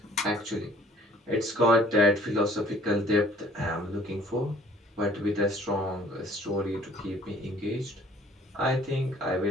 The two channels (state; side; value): normal; both; correlation 0.55